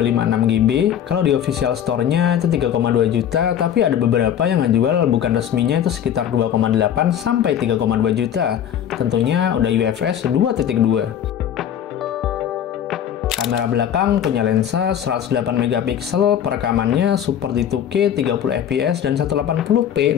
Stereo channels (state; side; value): quieter; right; 9.6 dB